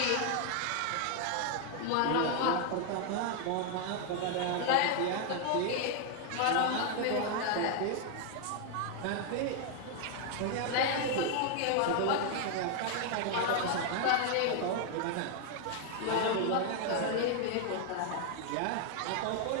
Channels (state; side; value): different; both; correlation 0.00